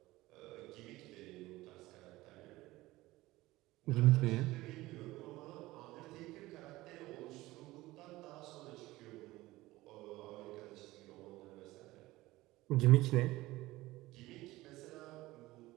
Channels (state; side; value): quieter; left; 18.5 dB